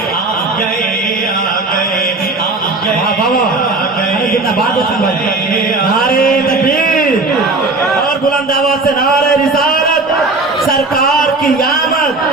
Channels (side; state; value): left; quieter; 3.3 dB